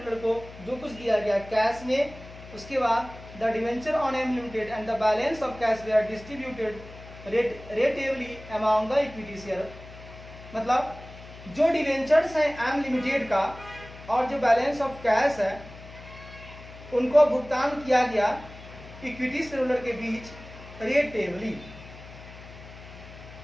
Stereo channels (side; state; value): left; noise; hum, 17 dB below the sound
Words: को जो कुछ दिया गया कैश में, उसके बाद the debenture on M limited and the balance of cash were distributed ratably among the equity share. मतलब जो डिवेंचर्स हैं एम लिमिटेड का और जो बैलेंस ऑफ कैश है उनको भुगतान किया गया इक्विटी शेयरहोल्डर के बीच रेटिवली।